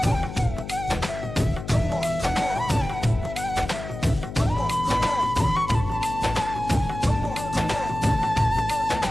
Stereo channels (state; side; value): noise; left; hum, 9 dB below the sound